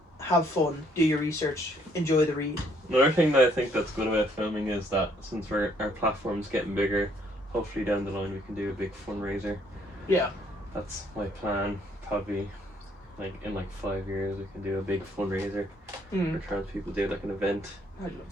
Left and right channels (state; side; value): normal; both; correlation 0.66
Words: have fun, do your research, enjoy the read. Another thing that I think that's good about filming is that since our platform's getting bigger, hopefully down the line we can do a big fundraiser. Yeah. That's my plan. Probably in 5 years we can do a big fundraiser for trans people, do like an event. I love